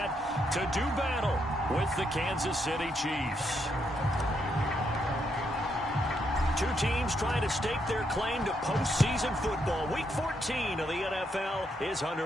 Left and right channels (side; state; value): both; normal; correlation 0.77